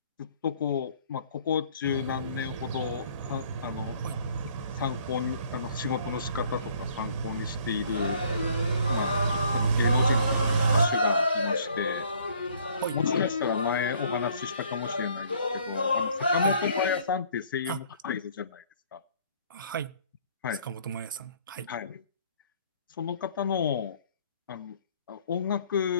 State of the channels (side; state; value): both; inverted; correlation -0.59